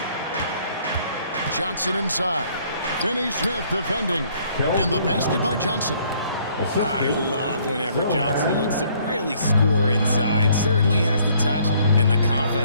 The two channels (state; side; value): inverted; both; correlation -0.63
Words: Johnson inside. Finney Smith defending. And the basket by Johnson. I love whenever Johnson looks to really score inside. Certainly has the touch and the